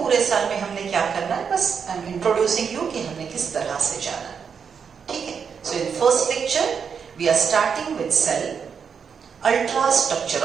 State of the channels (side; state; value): left; quieter; 6.6 dB